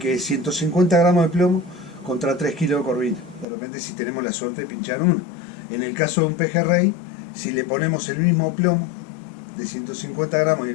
150 gramos de plomo contra 3 kilos de corvina. De repente, si tenemos la suerte de pinchar una. En el caso de un pejerrey, si le ponemos el mismo plomo de 150 gramos y el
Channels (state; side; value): drops out; right; at 3.5 s